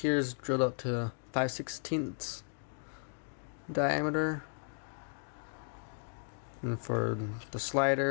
is drilled up to 5/16 diameter, and for the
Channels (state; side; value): silent; right; digital silence